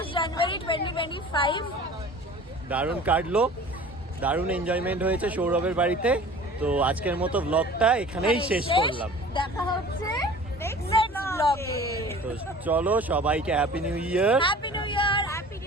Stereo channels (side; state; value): both; normal; correlation 0.44